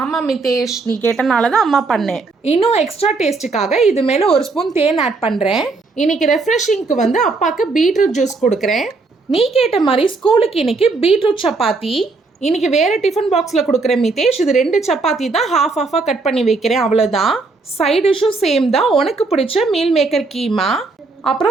ஆமா மிதேஷ், நீ கேட்டனால தான் அம்மா பண்ணேன். இன்னும் எக்ஸ்ட்ரா டேஸ்ட்டுக்காக இது மேலே ஒரு ஸ்பூன் தேன் ஆட் பண்ணுறேன். இன்னைக்கு ரெஃப்ரெஷிங்க்கு வந்து அப்பாவுக்கு பீட்ரூட் ஜூஸ் கொடுக்குறேன். நீ கேட்ட மாதிரி ஸ்கூலுக்கு இன்னைக்கு பீட்ரூட் சப்பாத்தி. இன்னைக்கு வேறு டிஃபன் பாக்ஸில் கொடுக்குறேன் மிதேஷ். இது 2 சப்பாத்தி தான் ஹாஃபாக கட் பண்ணி வைக்கிறேன், அவ்வளோதான். சைட் டிஷ்ஷும் சேம் தான். உனக்கு பிடிச்ச மீல் மேக்கர் கீமா,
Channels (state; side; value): quieter; left; 3.8 dB